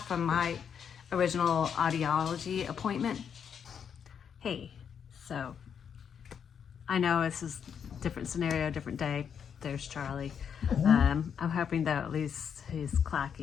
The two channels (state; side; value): quieter; right; 7.6 dB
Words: from my original audiology appointment. Hey, so I know this is different scenario, different day. There's Charlie. I'm hoping that at least he's